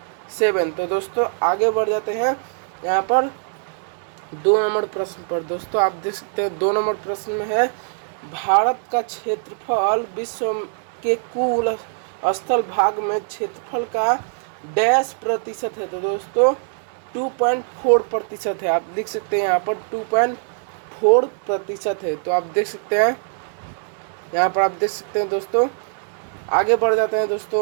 तो दोस्तों आगे बढ़ जाते हैं यहाँ पर 2 नंबर प्रश्न पर। दोस्तों आप देख सकते हैं 2 नंबर प्रश्न में है, भारत का क्षेत्रफल विश्व के कुल स्थल भाग में क्षेत्रफल का डैश प्रतिशत है। तो दोस्तों 2.4% है। आप लिख सकते हैं यहाँ पर 2.4% है। तो आप देख सकते हैं यहाँ पर, आप देख सकते हैं दोस्तों। आगे बढ़ जाते हैं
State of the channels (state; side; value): silent; left; 64 dB below the other